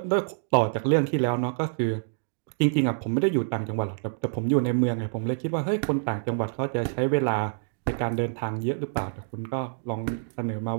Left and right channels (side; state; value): left; silent; digital silence